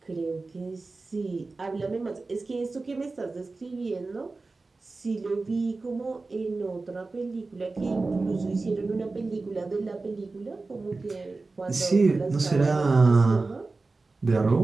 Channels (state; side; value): quieter; left; 3.6 dB